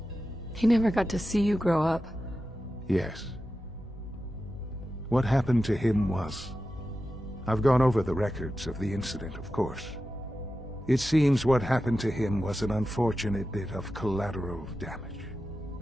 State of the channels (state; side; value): normal; both; correlation 0.92